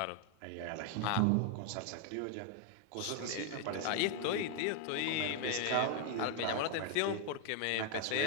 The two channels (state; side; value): different; both; correlation 0.01